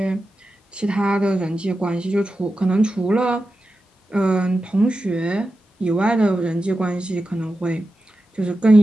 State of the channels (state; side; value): normal; both; correlation 0.91